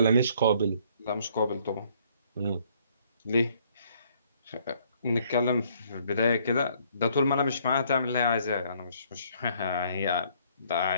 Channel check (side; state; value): both; inverted; correlation -0.64